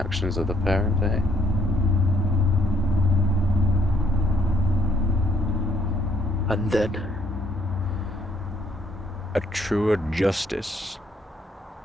of the parent, eh? And then? A truer justice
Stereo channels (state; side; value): normal; both; correlation 0.69